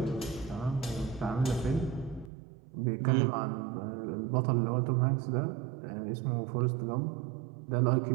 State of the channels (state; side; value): drops out; left; at 2.3 s